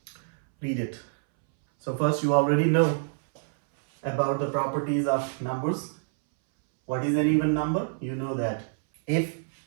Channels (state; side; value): silent; left; 60 dB below the other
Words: read it. So first, you already know about the properties of numbers. What is an even number? You know that if